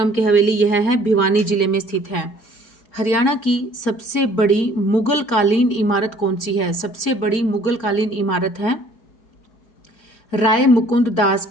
की हवेली यह है भिवानी जिले में स्थित है। हरियाणा की सबसे बड़ी मुगल कालीन इमारत कौन सी है? सबसे बड़ी मुगल कालीन इमारत है राय मुकुंद दास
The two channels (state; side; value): late; right; 4.8 ms